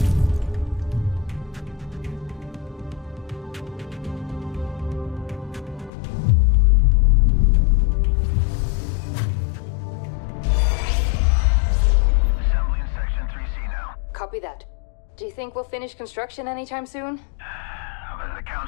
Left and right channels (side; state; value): right; drops out; at 5.9 s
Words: Copy that. Do you think we'll finish construction anytime soon? Was the